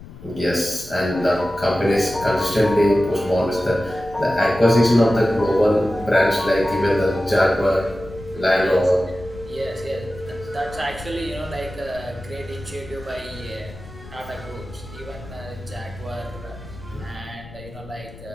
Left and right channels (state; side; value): noise; left; rumble, 17 dB below the sound